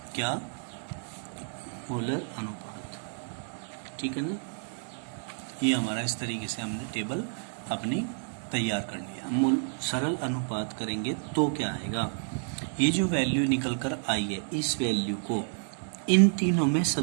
क्या मोलर अनुपात। ठीक है ना, ये हमारा इस तरीके से हमने टेबल अपनी तैयार कर लिया। हम सरल अनुपात करेंगे तो क्या आएगा, ये जो वैल्यू निकल कर आई है इस वैल्यू को इन तीनों में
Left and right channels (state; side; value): silent; left; 58 dB below the other